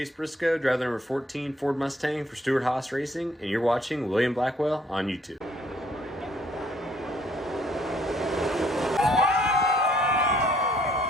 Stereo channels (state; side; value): normal; both; correlation 0.64